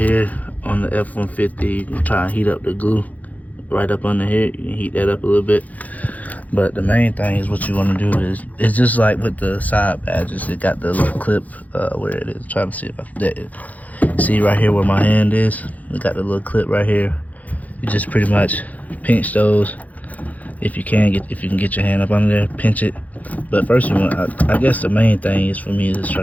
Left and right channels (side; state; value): right; late; 0.077 ms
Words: on the F150. You can try and heat up the glue right up under here. You can heat that up a little bit. But the main thing is what you want to do is, it's just like with the side badges. It got the little clip where it is. Trying to see if I can see right here where my hand is. It got the little clip right here. You just pretty much pinch those. If you can get your hand up under there, pinch it. But first you want, I guess the main thing is for me is